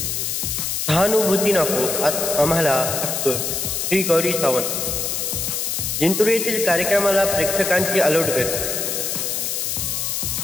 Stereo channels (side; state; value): left; noise; hiss, 1 dB below the sound